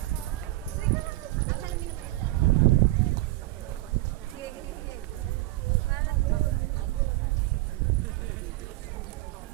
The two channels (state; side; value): quieter; left; 18.0 dB